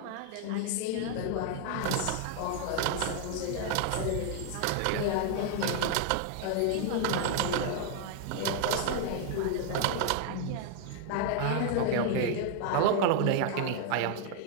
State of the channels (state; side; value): different; both; correlation 0.00